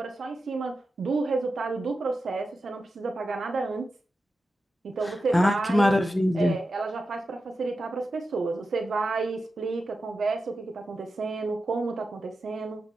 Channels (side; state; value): both; normal; correlation 0.91